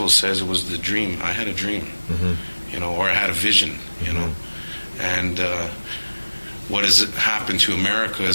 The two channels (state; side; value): inverted; both; correlation -1.00